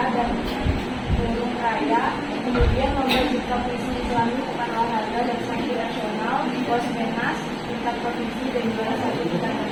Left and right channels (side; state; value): both; identical; correlation 1.00